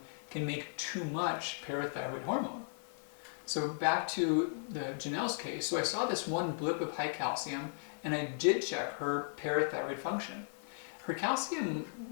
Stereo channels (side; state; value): right; silent; 54 dB below the other